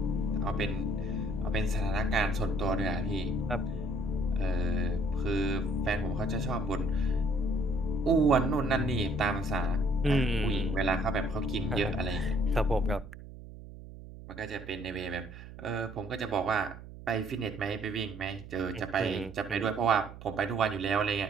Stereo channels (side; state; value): right; noise; hum, 15 dB below the sound